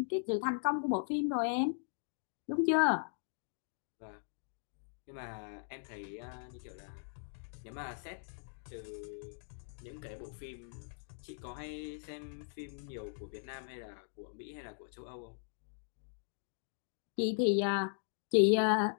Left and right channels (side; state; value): right; silent; digital silence